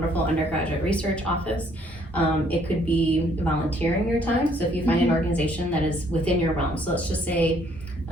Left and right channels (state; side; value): normal; both; correlation 0.65